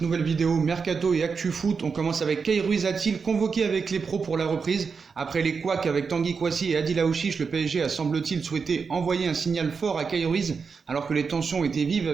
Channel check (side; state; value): left; quieter; 5.4 dB